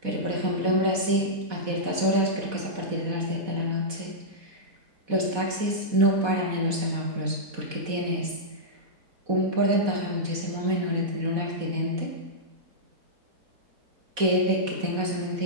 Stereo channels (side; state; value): left; late; 4.1 ms